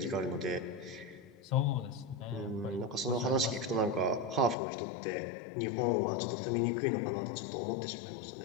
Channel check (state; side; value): drops out; right; at 4.5 s